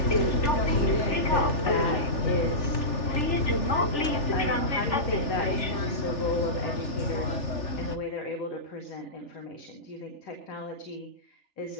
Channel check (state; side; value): late; right; 3.4 ms